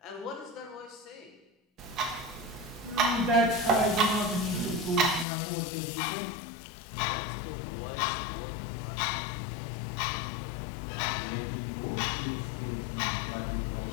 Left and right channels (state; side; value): drops out; right; at 5.2 s